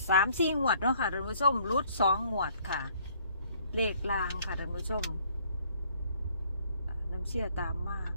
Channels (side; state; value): both; inverted; correlation -0.61